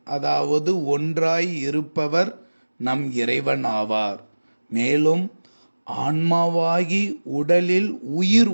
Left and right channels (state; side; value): inverted; both; correlation -1.00